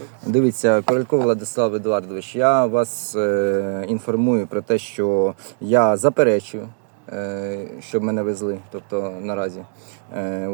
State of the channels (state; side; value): silent; left; 65 dB below the other